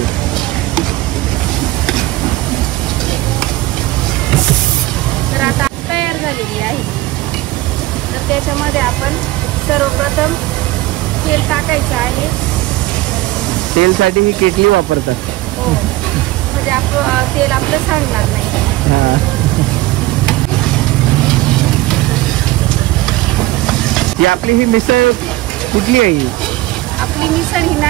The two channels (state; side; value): quieter; left; 18.1 dB